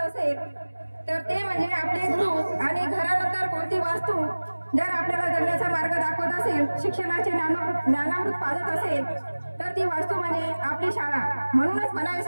असेल तर ते म्हणजे आपले गुरु, आणि घरानंतर कोणती वास्तू जर आपल्याला जगण्याचा मार्ग दाखवत असेल, शिक्षणाचे ज्ञानामृत पाजत असेल तर ती वास्तू म्हणजे आपली शाळा. म्हणूनच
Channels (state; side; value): inverted; both; correlation -1.00